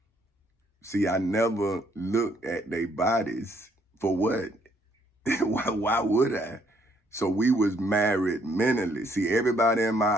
See, I never looked at their bodies for what? Why would I? So we was married mentally. See, everybody in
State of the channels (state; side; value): normal; both; correlation 0.68